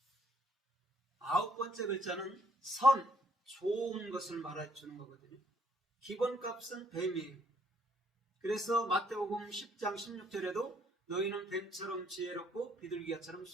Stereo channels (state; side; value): normal; both; correlation 0.67